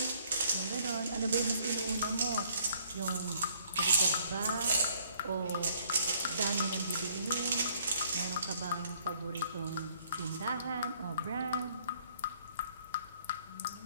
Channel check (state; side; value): inverted; both; correlation -0.63